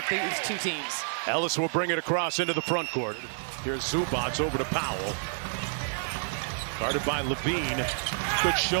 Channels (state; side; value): silent; left; digital silence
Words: these two teams. Ellis will bring it across into the front court. Here's Zubac over to Powell. Guarded by Levine. Good